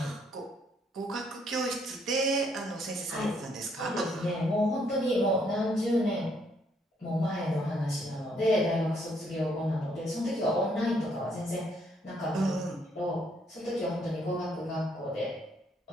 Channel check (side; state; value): both; normal; correlation 0.70